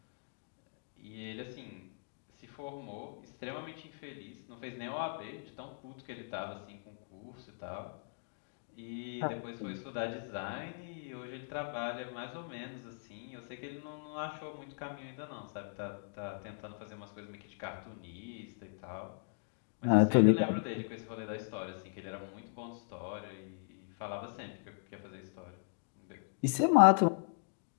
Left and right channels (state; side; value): silent; right; digital silence